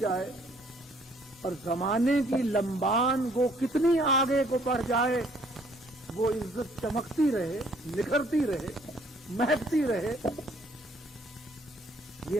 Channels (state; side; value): normal; both; correlation 0.62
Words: اور زمانے کی لمبان وہ کتنی آگے کو بڑھ جائے، وہ عزت چمکتی رہے، نکھرتی رہے، مہکتی رہے. یہ